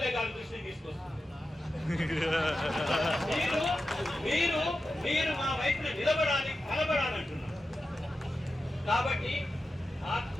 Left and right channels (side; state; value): both; normal; correlation 0.91